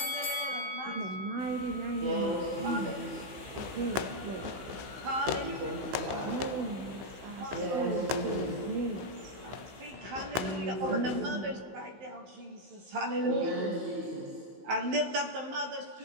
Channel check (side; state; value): left; late; 15 ms